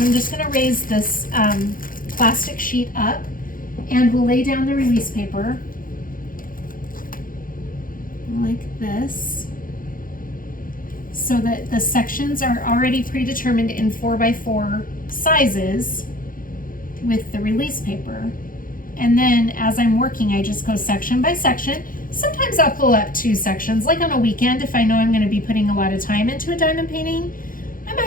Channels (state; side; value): late; right; 0.40 ms